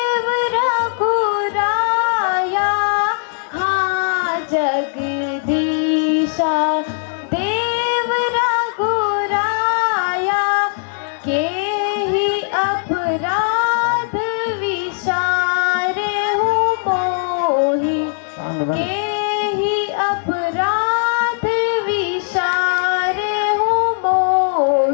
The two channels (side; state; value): right; silent; digital silence